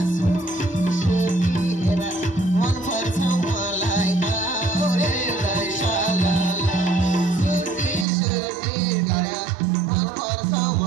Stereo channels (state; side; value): drops out; left; at 8.1 s